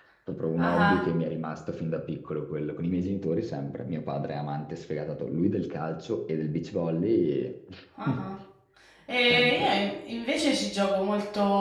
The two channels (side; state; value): both; identical; correlation 1.00